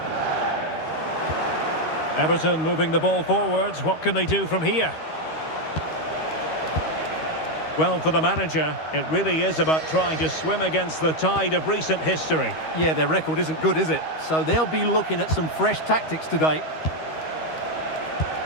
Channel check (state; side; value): late; right; 13 ms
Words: Everton moving the ball forwards. What can they do from here? Well, for the manager, it really is about trying to swim against the tide of recent history. Yeah, their record isn't good, is it? So they'll be looking at some fresh tactics today.